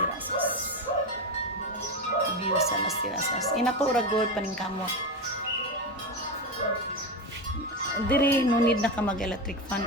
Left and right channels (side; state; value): both; normal; correlation 0.17